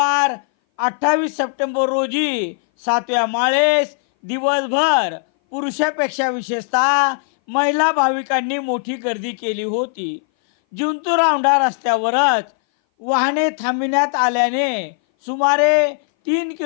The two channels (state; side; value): silent; right; 60 dB below the other